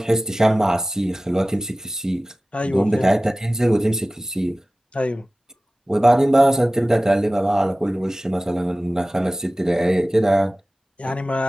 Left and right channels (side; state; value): both; normal; correlation 0.97